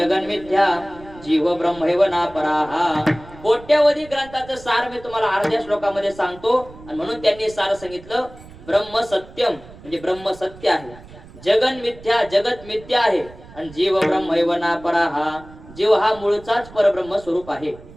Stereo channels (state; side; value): noise; right; rumble, 19 dB below the sound